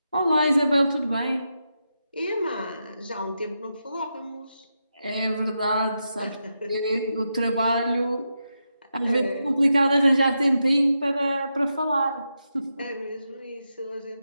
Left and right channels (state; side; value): inverted; both; correlation -0.87